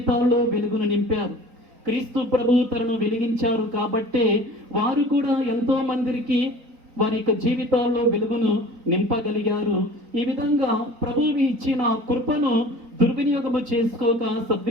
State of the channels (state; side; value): late; left; 4.4 ms